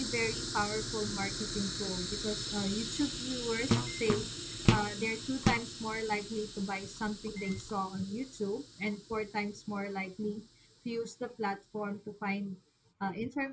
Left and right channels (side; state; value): both; identical; correlation 1.00